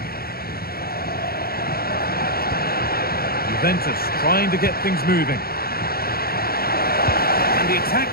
Juventus trying to get things moving. And the attack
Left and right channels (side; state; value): right; late; 0.44 ms